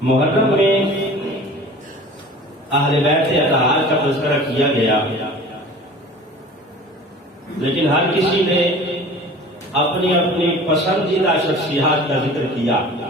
محرم میں اہل بیت اطہار کا تذکرہ کیا گیا، لیکن ہر کسی نے اپنی اپنی پسندیدہ شخصیات کا ذکر کیا،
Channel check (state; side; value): normal; both; correlation 0.42